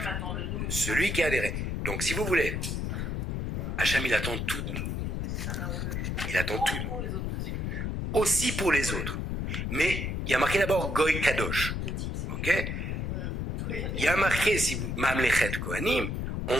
Celui qui a adhéré. Donc, si vous voulez, Hacham, il attend tout de nous. Il attend tout de nous. Aussi pour les autres. Mais il y a marqué d'abord Goy Kadosh. Ok ? Il y a marqué, si vous, Mamlechet Kohanim,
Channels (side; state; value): left; noise; rumble, 2 dB below the sound